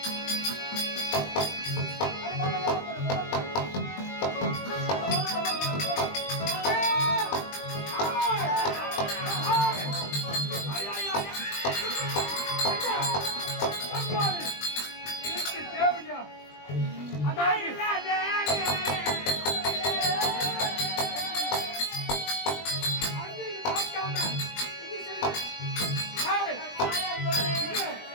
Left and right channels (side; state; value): right; late; 20 ms